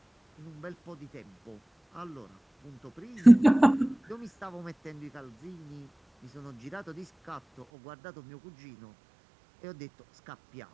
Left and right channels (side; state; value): left; drops out; at 7.7 s